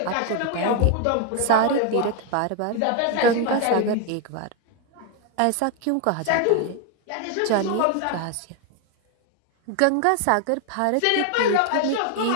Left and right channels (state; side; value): different; both; correlation 0.01